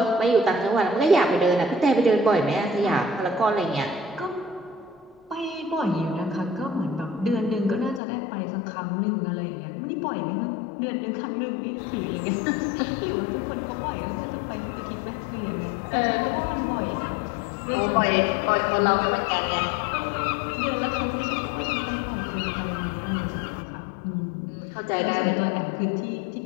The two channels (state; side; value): drops out; right; at 8.0 s